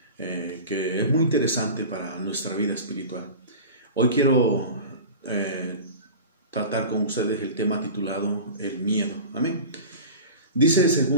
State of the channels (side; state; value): both; inverted; correlation -0.34